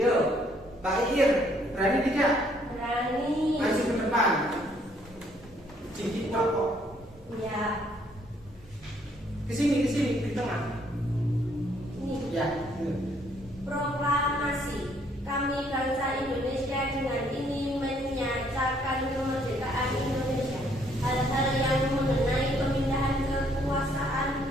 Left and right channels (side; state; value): both; normal; correlation 0.66